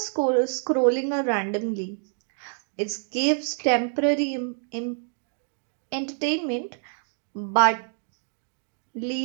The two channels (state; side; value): silent; left; 60 dB below the other